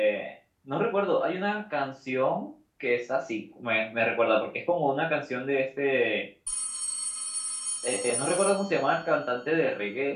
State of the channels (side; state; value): both; identical; correlation 1.00